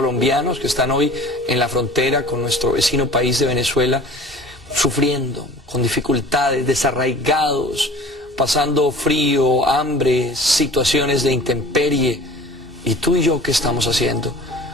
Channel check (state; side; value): normal; both; correlation 0.44